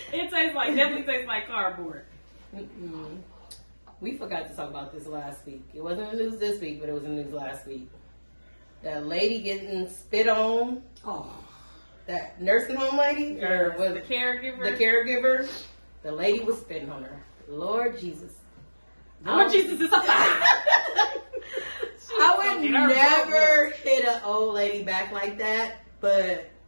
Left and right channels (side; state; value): both; inverted; correlation -1.00